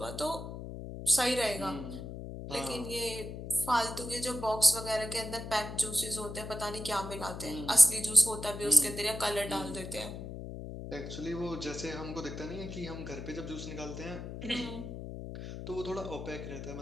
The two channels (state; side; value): noise; left; hum, 8 dB below the sound